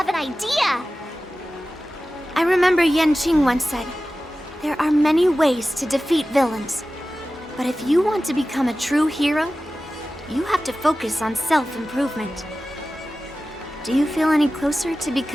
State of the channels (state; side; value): normal; both; correlation 0.95